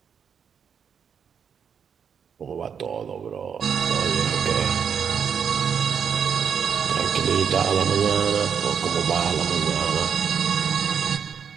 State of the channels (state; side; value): quieter; left; 7.2 dB